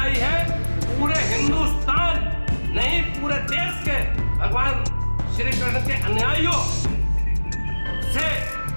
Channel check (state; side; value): inverted; both; correlation -1.00